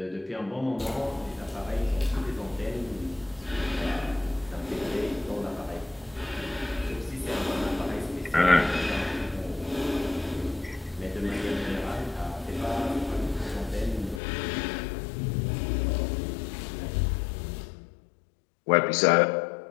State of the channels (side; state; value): right; drops out; at 14.2 s